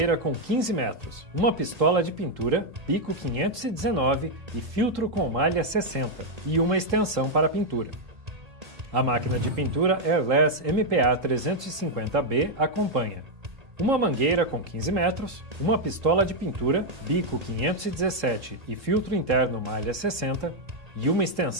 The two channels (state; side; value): late; left; 1.8 ms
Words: com 15 metros, uma pistola de pintura, bico 519 e filtro com malha 60 e uma extensão para pintura. A máquina de pintura Airless MPA 350B acompanha uma mangueira com 15 metros, uma pistola de pintura, bico 517 e filtro interno malha 60 e uma